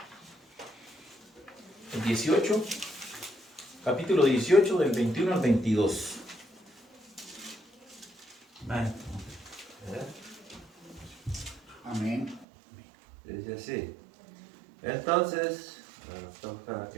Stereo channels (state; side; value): drops out; left; at 12.5 s